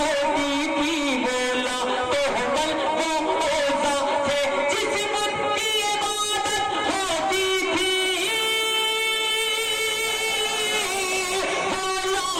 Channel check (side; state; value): both; identical; correlation 1.00